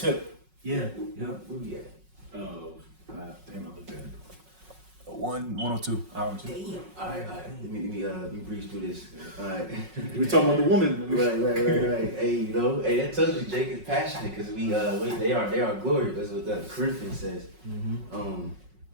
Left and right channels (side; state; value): left; late; 5.4 ms